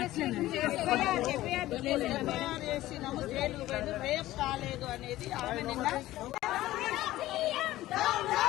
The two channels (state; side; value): quieter; right; 15.8 dB